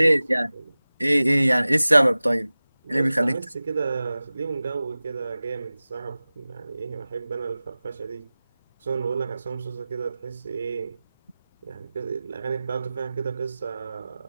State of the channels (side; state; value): both; inverted; correlation -0.97